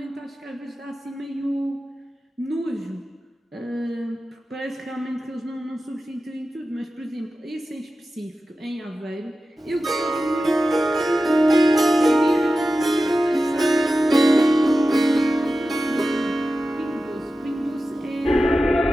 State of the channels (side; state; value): both; normal; correlation 0.93